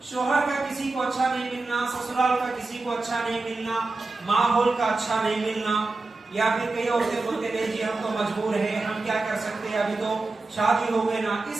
شوہر کا کسی کو اچھا نہیں ملنا، سسرال کا کسی کو اچھا نہیں ملنا، ماحول کا اچھا نہیں ملنا، یا پھر کئی عورتیں بولتے نہیں جی ہم تو مجبور ہیں، ہم کیا کر سکتے ہیں، ابھی تو شادی ہو گئے نا.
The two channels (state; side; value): quieter; left; 3.4 dB